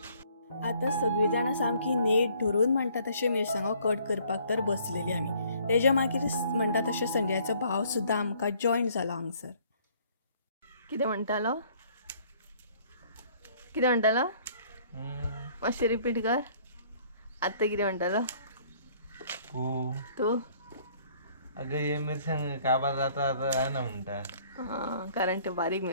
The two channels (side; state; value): both; inverted; correlation -0.60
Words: आता सगळी जाणां सामकी नेट धरून म्हणटा तशें मिरसांगो कट करपाक तर बसलेली आमी. तेज्या मागीर म्हणटा तशें संजयाचो भाव सुद्दां आमकां जॉयन जालो हांगसर. कितें म्हणटालो कितें म्हणटालो मातशें रिपीट कर. आतां कितें म्हणटालो तूं? अगं हे मिरसांग काबार जाता आहे ना म्हणटा. हां, कारण ते बारीक